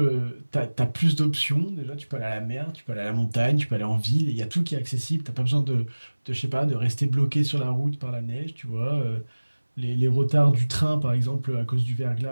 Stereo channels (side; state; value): both; inverted; correlation -1.00